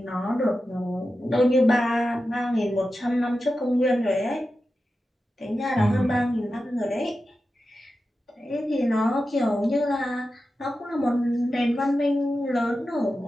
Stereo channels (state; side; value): normal; both; correlation 0.92